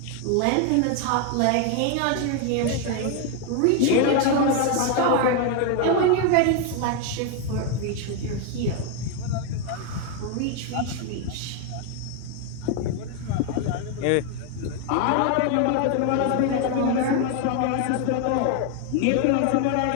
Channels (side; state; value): both; different; correlation 0.01